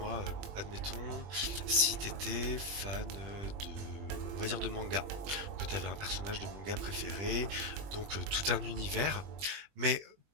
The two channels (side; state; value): left; late; 20 ms